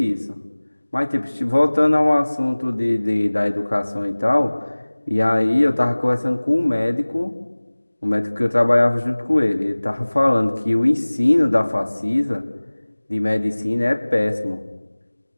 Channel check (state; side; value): inverted; both; correlation -1.00